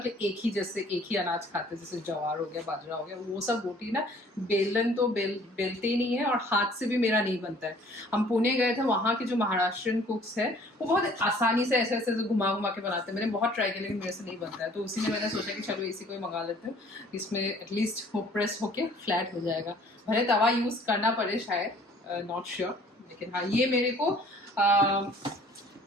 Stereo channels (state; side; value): normal; both; correlation 0.55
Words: एक ही अनाज खाते हैं, जैसे ज्वार हो गया, बाजरा हो गया, वो सब रोटी ना बेलन तो बेलते ही नहीं है, और हाथ से भी मेरा नहीं बनता है। हम पुणे गए थे, वहाँ के जो महाराष्ट्रियन कुक्स है वो बहुत आसानी से ऐसे ऐसे घुमा घुमा के बनाते हैं। मैंने बहुत ट्राई किया लेकिन मेरे से नहीं बनता है, तो उसी में मैंने सोचा कि चलो इसी को ही मंगा लेते हैं, इसमें एटलीस्ट वो प्रेस होके फ्लैट हो जाएगा। भले तवा यूज करना पड़े शायद, नॉट श्योर, लेकिन हाँ ये मेरे को